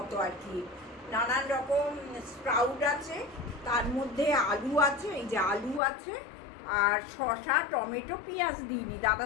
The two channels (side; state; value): right; drops out; at 5.8 s